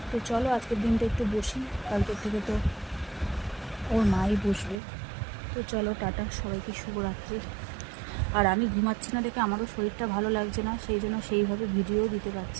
তো চলো আজকের দিনটা একটু বসি, কালকের থেকে তো ওর মাই বসবে। তো চলো টাটা, সবাইকে শুভরাত্রি। আর আমি ঘুমাচ্ছি না দেখে আমারও শরীরটা ভালো লাগছে না, সেই জন্য সেইভাবে ভিডিও দিতে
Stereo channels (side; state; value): left; drops out; at 4.8 s